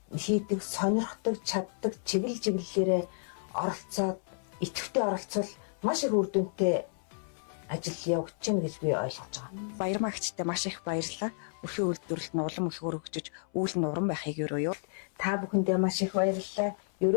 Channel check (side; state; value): right; silent; 57 dB below the other